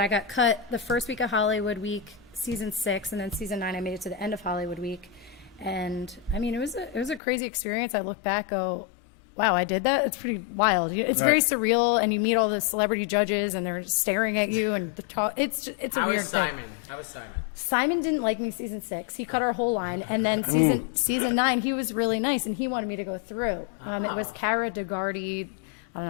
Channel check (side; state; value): right; drops out; at 7.2 s